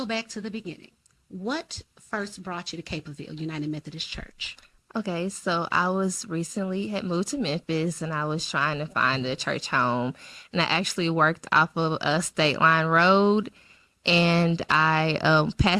back to the beginning. What first brought you to Capleville United Methodist Church? Okay, so I had moved to Memphis and I was trying to find a church home. And I actually worked off of a State Line Road, and I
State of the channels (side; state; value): both; identical; correlation 1.00